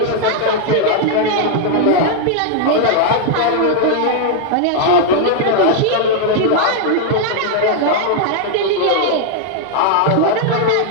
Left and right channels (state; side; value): different; both; correlation 0.00